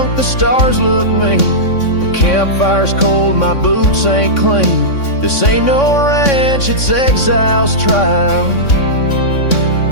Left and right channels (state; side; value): late; right; 3.6 ms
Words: the stars look mean. The campfire's cold, my boots ain't clean. This ain't no ranch, it's exile's trial.